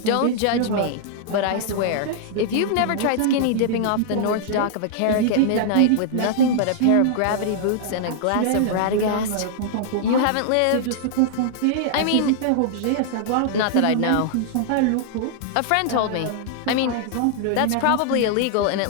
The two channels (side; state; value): both; different; correlation -0.01